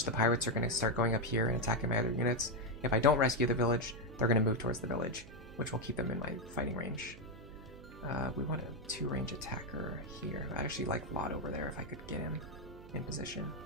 the pirates are going to start going up here and attacking my other units. If I don't rescue the village, they're going to move towards the village, which will keep them in my fighting range. We want a 2-range attacker here. I actually like Lot over there if I could get him in position.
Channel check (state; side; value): noise; right; hum, 17 dB below the sound